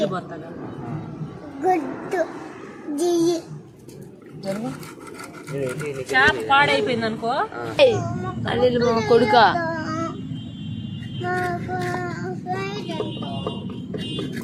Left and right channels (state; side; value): identical; both; correlation 1.00